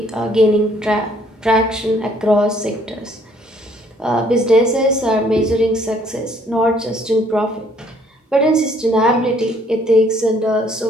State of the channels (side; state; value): both; normal; correlation 0.63